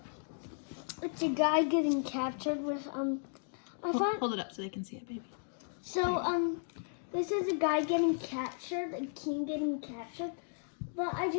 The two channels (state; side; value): silent; right; digital silence